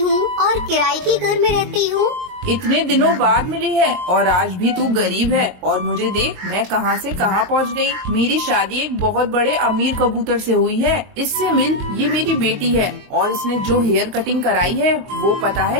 और किराए के घर में रहती हूँ। इतने दिनों बाद मिली है और आज भी तू गरीब है। और मुझे देख, मैं कहाँ से कहाँ पहुँच गई। मेरी शादी एक बहुत बड़े अमीर कबूतर से हुई है। इससे मिल, ये मेरी बेटी है। और इसने जो हेयर कटिंग कराई है वो पता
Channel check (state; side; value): late; left; 22 ms